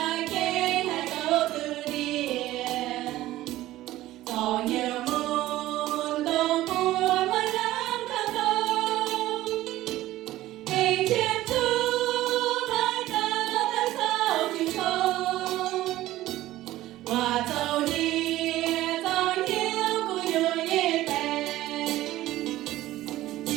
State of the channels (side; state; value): left; quieter; 15.6 dB